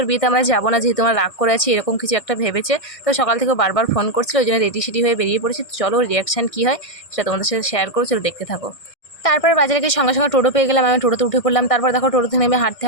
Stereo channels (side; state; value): right; late; 1.6 ms